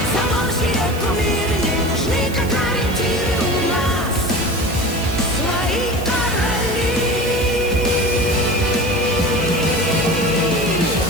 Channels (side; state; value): right; noise; hiss, 15 dB below the sound